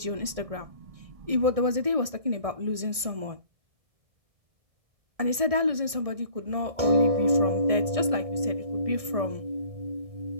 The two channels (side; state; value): left; late; 1.6 ms